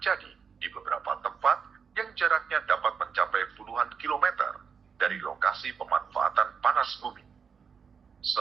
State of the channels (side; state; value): left; quieter; 6.2 dB